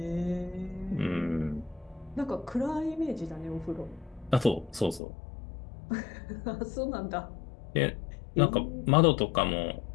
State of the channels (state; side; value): drops out; right; at 5.0 s